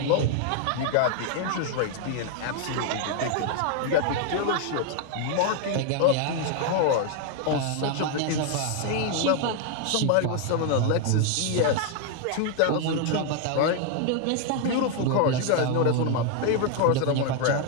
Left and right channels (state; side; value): different; both; correlation 0.00